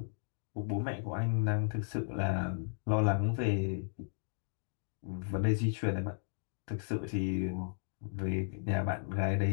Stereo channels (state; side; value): silent; right; digital silence